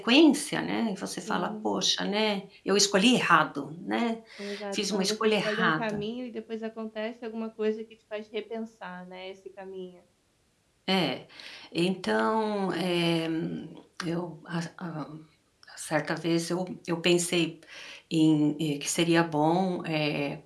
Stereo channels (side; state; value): both; identical; correlation 1.00